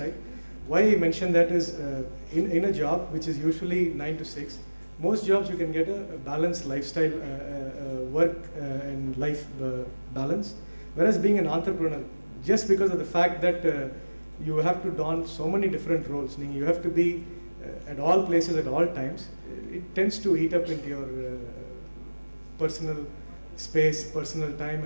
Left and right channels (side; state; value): both; inverted; correlation -1.00